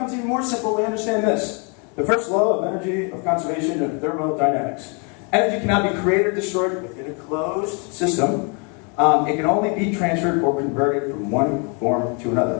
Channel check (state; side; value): quieter; right; 35.1 dB